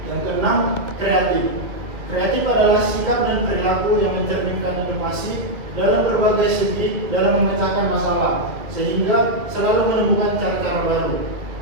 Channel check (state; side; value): late; left; 1.8 ms